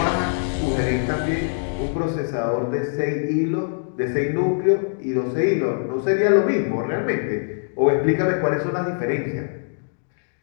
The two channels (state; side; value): silent; right; digital silence